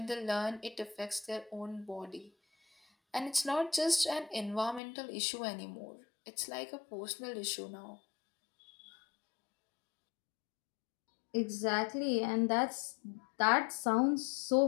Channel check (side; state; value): right; drops out; at 4.8 s